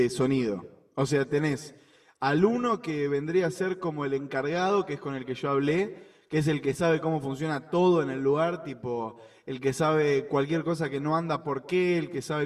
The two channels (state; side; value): identical; both; correlation 1.00